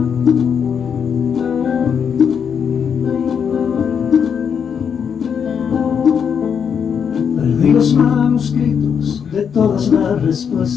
Perdí los manuscritos de todas las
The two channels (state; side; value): quieter; right; 7.2 dB